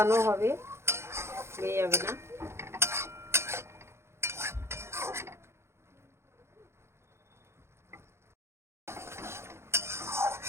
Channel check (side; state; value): left; late; 0.13 ms